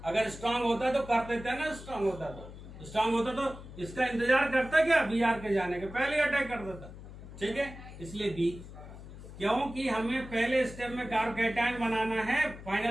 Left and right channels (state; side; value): noise; left; hum, 14 dB below the sound